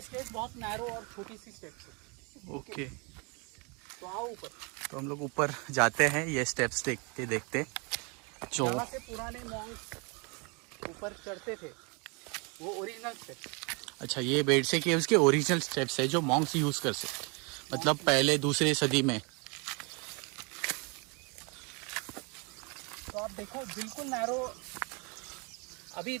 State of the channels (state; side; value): quieter; left; 32.0 dB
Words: स्टेप्स बहुत नैरो और छोटी सी स्टेप्स है। ओके, तो आओ ऊपर। तो हम लोग ऊपर जाते हैं ये स्टेप्स देखते देखते। जो जहाँ से पुराने मॉन्क्स ऊपर चढ़ते थे वो ओरिजिनल स्टेप्स। अच्छा, ये बेडसे केव्स के ओरिजिनल स्टेप्स है जो मॉन्क्स यूज़ कर सकते, मतलब पहले दूसरे सदी में। तो आप देखो बिल्कुल नैरो। अभी